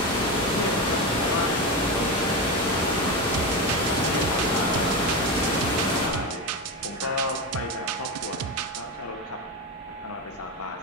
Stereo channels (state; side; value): normal; both; correlation 0.17